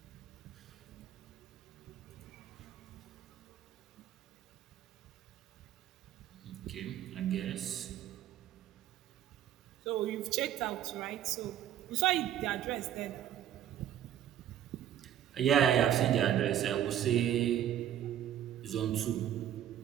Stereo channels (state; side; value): quieter; left; 11.0 dB